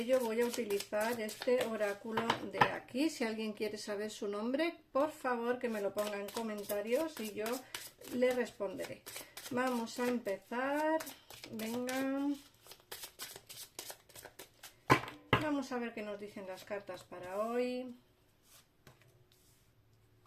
voy a utilizar este oráculo de aquí. Si alguien quiere saber su nombre, por favor que me lo ponga en comentarios y yo le responderé. Vamos a empezar. Venga. Vamos a ver qué nos dicen las cartas para hoy.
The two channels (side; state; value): both; identical; correlation 1.00